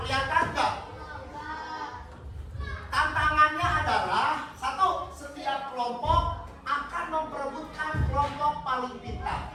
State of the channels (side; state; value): both; identical; correlation 1.00